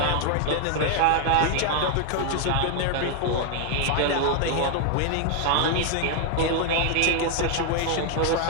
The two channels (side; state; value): both; different; correlation 0.00